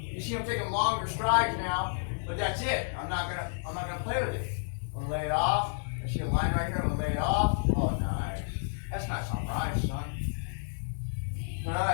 see, I'm taking longer strides now, but that's it. I'm not gonna play with it. I'm gonna lay it off. I see a line right here. I'm gonna lay it off. Oh, nice. That's nice on rice, son. All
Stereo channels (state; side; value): silent; right; digital silence